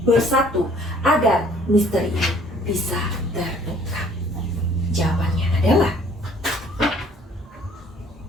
bersatu agar misteri ini bisa terungkap. Jawabannya adalah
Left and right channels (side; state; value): both; normal; correlation 0.57